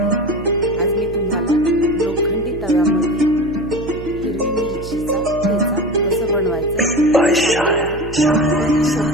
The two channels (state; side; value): noise; right; hum, 12 dB below the sound